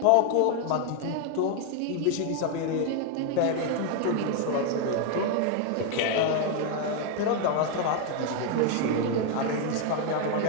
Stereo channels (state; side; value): different; both; correlation 0.00